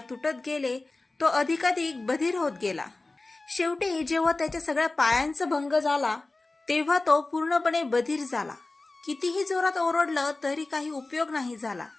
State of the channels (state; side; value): quieter; right; 3.2 dB